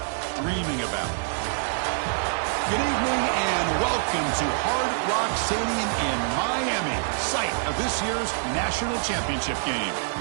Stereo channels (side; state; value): left; silent; 61 dB below the other